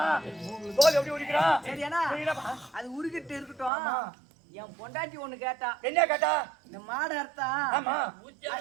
தோல் எப்படி உரிக்கிறான்? சரியானா அது உருகிட்டு இருக்கட்டும். என் பொண்டாட்டி ஒண்ணு கேட்டா. என்ன கேட்டா? இந்த மாடு அறுத்தா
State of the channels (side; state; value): left; drops out; at 3.7 s